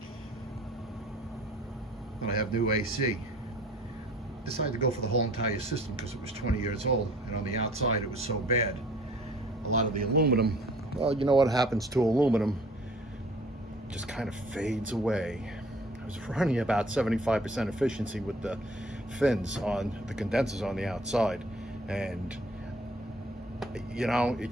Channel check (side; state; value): both; normal; correlation 0.52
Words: Then I have new AC. Decided to go for the whole entire system because it was 20 years old, and on the outside it was so bad. A lot of the aluminum, well, you know what happens to aluminum, just kind of fades away. I was running about 75% efficiency with the fins on the condensers on the outside, and